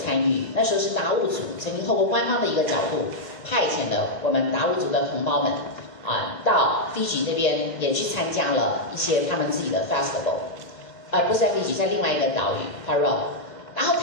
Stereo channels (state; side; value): late; right; 2.1 ms